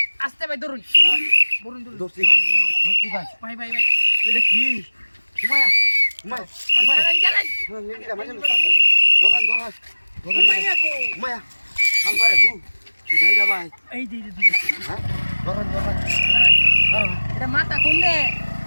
আস্তে ভাই ধরুন ধরুন ধরুন দোস্তি দোস্তি ভাই ভাই ভাই ভাই এটা কি উমায়া উমায়া উমায়া জানেন জানেন এটা মাঝে ধরান ধরান ধরান উমাইয়া কো উমায়া হাল মারে দু কিডা ভাই এই দে হ্যাঁ ধরান ধরান এটা মাথা কোনে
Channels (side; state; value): both; inverted; correlation -1.00